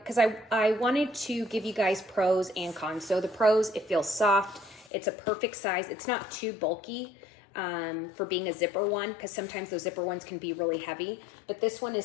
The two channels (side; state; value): right; drops out; at 4.9 s